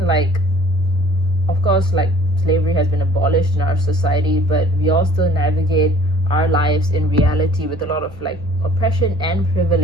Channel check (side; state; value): left; noise; hum, 22 dB below the sound